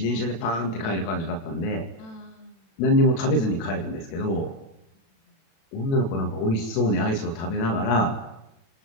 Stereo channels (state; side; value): late; right; 36 ms